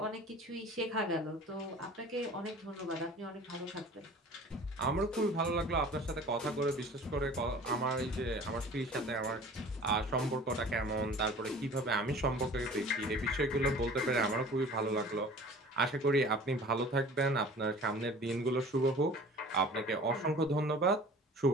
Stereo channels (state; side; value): normal; both; correlation 0.44